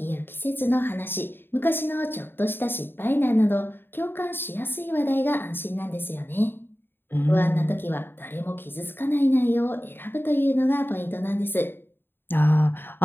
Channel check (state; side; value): late; right; 0.10 ms